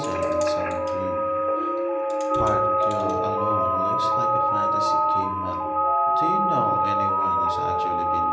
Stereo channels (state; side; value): identical; both; correlation 1.00